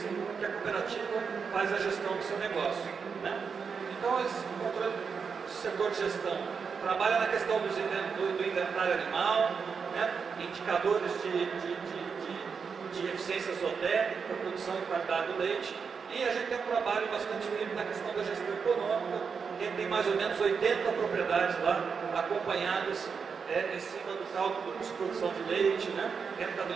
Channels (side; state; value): left; quieter; 5.8 dB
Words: que a cooperativa faz a gestão do seu negócio, né? Então, esse controle do setor de gestão trabalha na questão do inventário animal, né? Indicadores de eficiência zootécnica, produção e qualidade do leite. E a gente tem um trabalho bastante firme na questão da gestão econômica, que é tem mais ou menos 80 propriedades lá, acompanhadas em cima do cálculo de produção de leite, né,